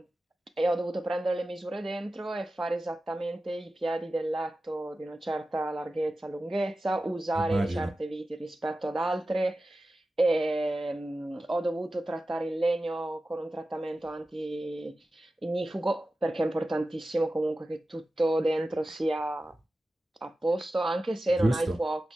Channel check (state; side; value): normal; both; correlation 0.94